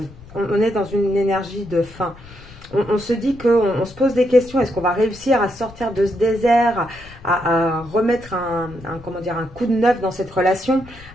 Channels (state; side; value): noise; left; rumble, 20 dB below the sound